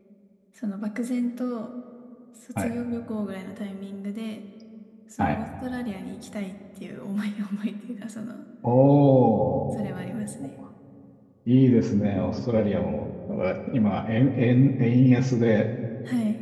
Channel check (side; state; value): both; identical; correlation 1.00